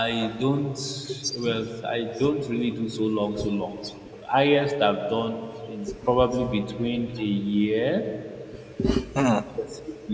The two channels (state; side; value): identical; both; correlation 1.00